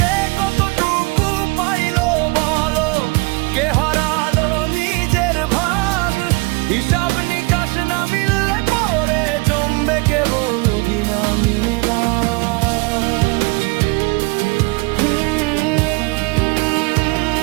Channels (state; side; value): quieter; left; 26.9 dB